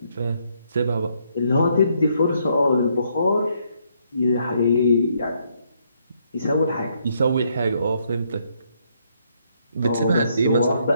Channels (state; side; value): inverted; both; correlation -0.73